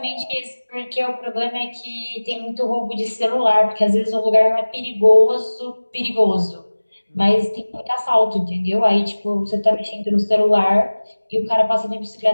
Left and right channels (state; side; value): inverted; both; correlation -1.00